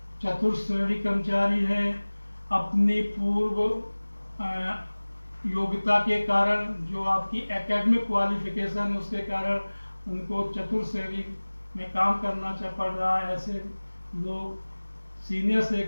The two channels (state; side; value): inverted; both; correlation -1.00